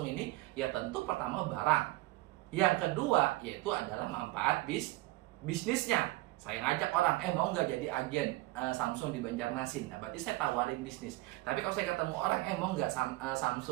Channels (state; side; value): quieter; left; 19.5 dB